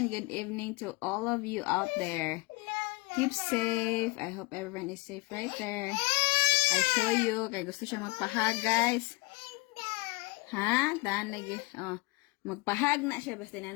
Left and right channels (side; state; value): right; quieter; 25.8 dB